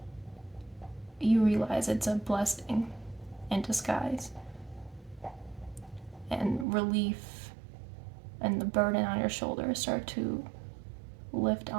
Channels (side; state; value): left; drops out; at 6.7 s